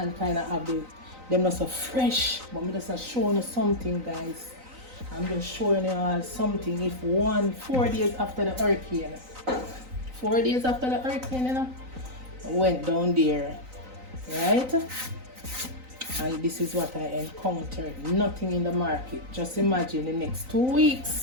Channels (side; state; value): left; late; 3.9 ms